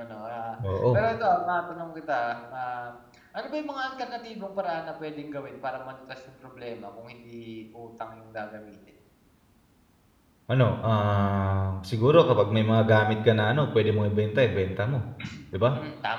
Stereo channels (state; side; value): identical; both; correlation 1.00